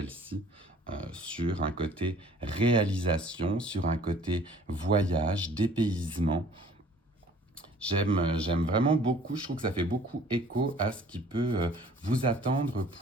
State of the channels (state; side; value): normal; both; correlation 0.52